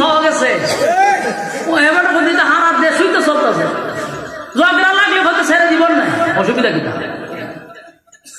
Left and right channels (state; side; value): identical; both; correlation 1.00